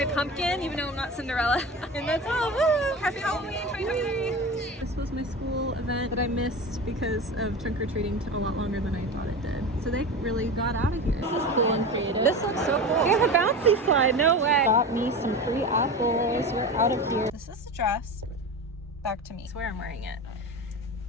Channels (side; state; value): both; normal; correlation 0.28